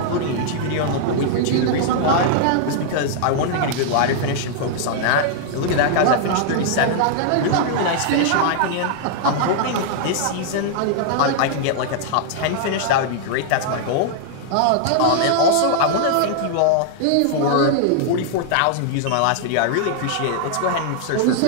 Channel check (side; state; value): both; different; correlation -0.01